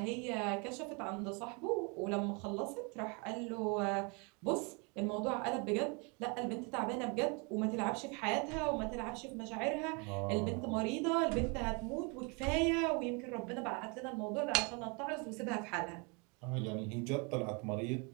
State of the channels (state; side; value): quieter; left; 32.3 dB